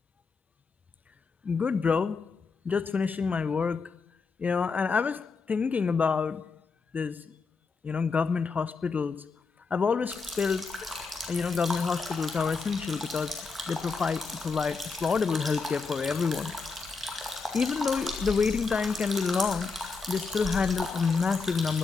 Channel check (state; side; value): quieter; right; 4.7 dB